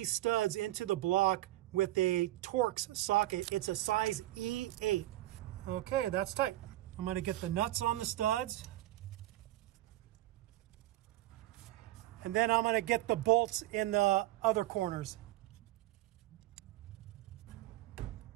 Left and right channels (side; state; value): left; quieter; 16.3 dB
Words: studs into the block with a Torx socket. It's a size E8. Okay, that's tight. I'm going to get the nuts on the studs. And then I'm going to get the bolts in the other corners.